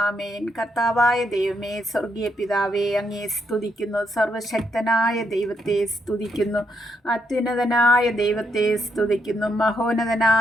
കർത്താവായ ദൈവമേ, സ്വർഗീയ പിതാവേ, അങ്ങേ സ്തുതിക്കുന്നു. സർവശക്തനായ ദൈവത്തെ സ്തുതിക്കുന്നു. അത്യുന്നതനായ ദൈവത്തെ സ്തുതിക്കുന്നു.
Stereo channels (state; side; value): normal; both; correlation 0.78